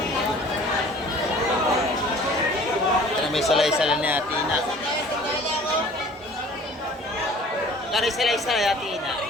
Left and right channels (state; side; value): normal; both; correlation 0.49